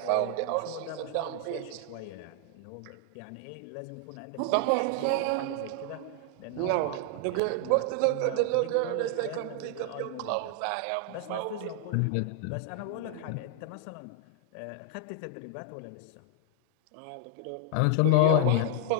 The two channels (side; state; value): both; different; correlation 0.00